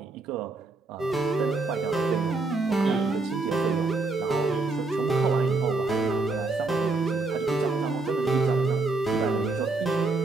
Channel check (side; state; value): left; quieter; 3.6 dB